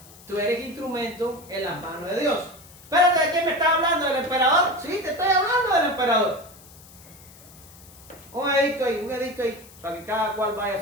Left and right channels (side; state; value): left; noise; hiss, 22 dB below the sound